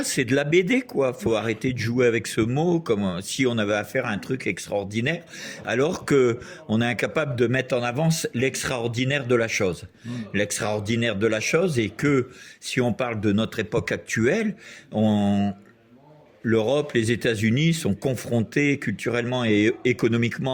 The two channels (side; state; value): both; identical; correlation 1.00